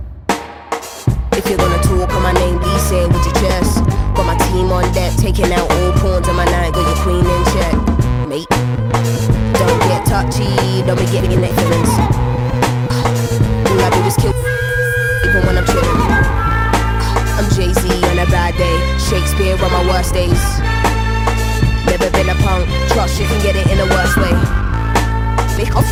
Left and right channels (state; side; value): identical; both; correlation 1.00